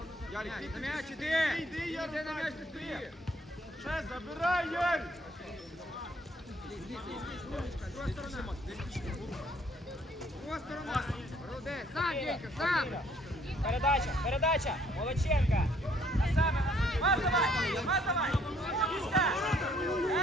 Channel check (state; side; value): normal; both; correlation 0.64